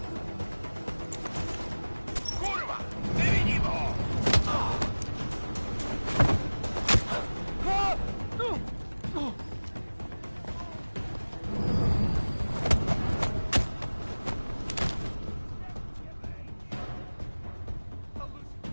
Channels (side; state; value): both; inverted; correlation -1.00